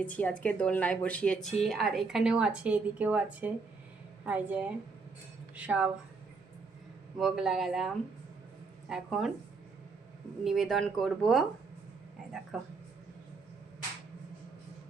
আজকে দোলনায় বসিয়েছি। আর এখানেও আছে, এদিকেও আছে, এই যে সব ভোগ লাগালাম। এখন নিবেদন করব। এই দেখো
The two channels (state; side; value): quieter; left; 4.4 dB